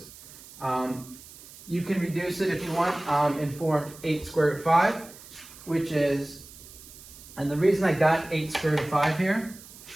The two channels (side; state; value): right; noise; hiss, 18 dB below the sound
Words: You can reduce it if you want and form 8 square root of 5, which is, and the reason I got 8 square root of 5 here